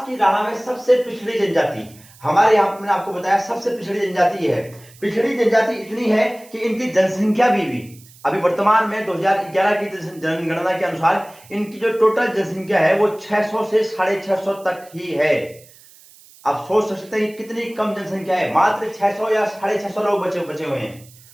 की राह में सबसे पिछड़ी जनजाति हमारे यहाँ पर मैंने आपको बताया, सबसे पिछड़ी जनजाति ये है। पिछड़ी जनजाति इतनी है कि इनकी जनसंख्या भी अभी वर्तमान में 2011 की जनगणना के अनुसार इनकी जो टोटल जनसंख्या है वो 600 से 650 तक ही है। आप सोच सकते हैं कितनी कम जनसंख्या है, मात्र 600 या 650 लोग बचे हुए हैं।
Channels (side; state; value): right; noise; hiss, 24 dB below the sound